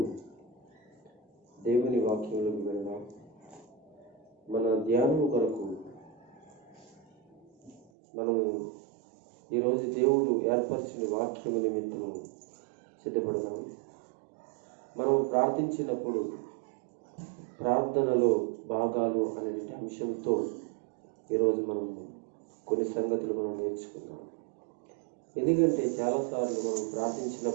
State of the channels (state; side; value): drops out; left; at 7.9 s